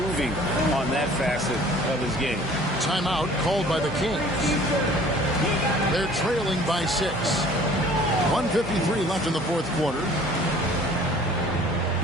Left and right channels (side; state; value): both; normal; correlation 0.51